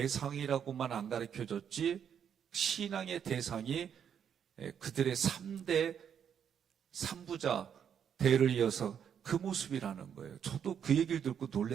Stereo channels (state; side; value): quieter; left; 8.2 dB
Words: 안 가르쳐줬지 신앙의 대상이 그들의 3대 3부자 대를 이어서 그 모습이라는 거예요. 저도 그 얘기를 듣고